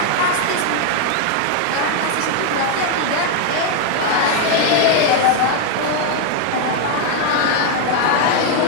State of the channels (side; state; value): both; different; correlation 0.01